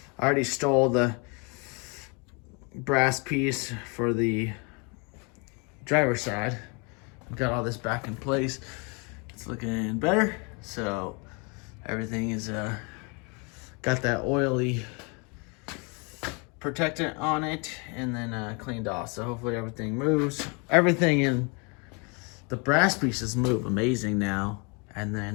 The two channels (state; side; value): quieter; right; 32.6 dB